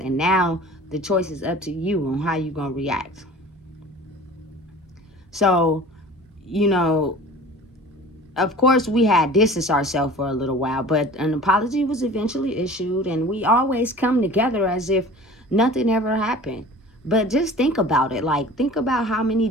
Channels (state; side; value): normal; both; correlation 0.42